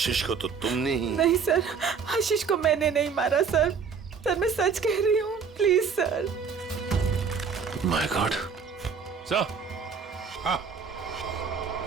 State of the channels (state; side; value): quieter; left; 6.0 dB